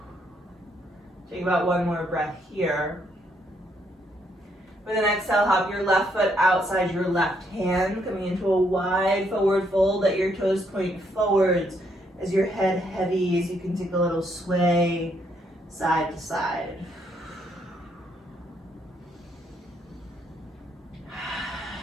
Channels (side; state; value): both; normal; correlation 0.73